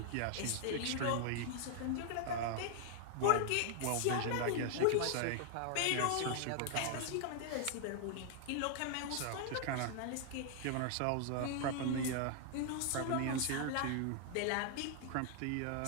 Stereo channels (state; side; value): different; both; correlation 0.00